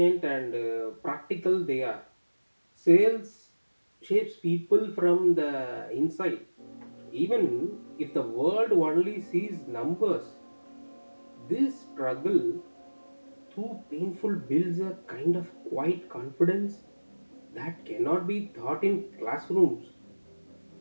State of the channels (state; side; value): inverted; both; correlation -1.00